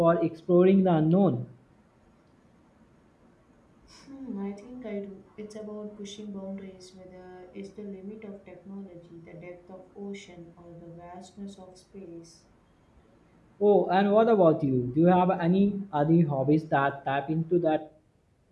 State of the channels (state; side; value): identical; both; correlation 1.00